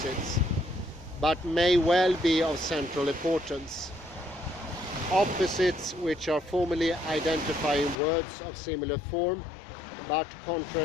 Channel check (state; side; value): drops out; right; at 8.0 s